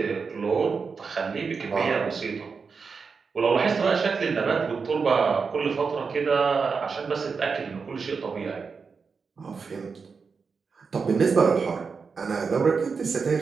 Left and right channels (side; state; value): left; quieter; 5.2 dB